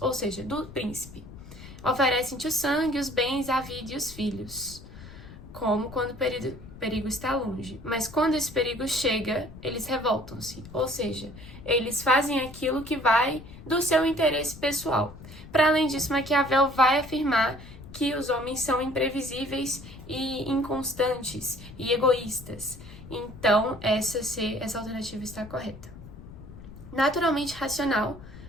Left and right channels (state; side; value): noise; left; rumble, 16 dB below the sound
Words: ou seja, do príncipe. Oferecem-te o sangue, os bens, a vida e os filhos, como quando o perigo está longe. Mas quando esse perigo chega, eles revoltam-se, ou seja, eles fazem aquilo que vai do seu interesse pessoal. Para além disso, Maquiavel vai afirmar que os homens são imprevisíveis e inconstantes e egoístas. Então, essa alternativa está correta. Naturalmente racional,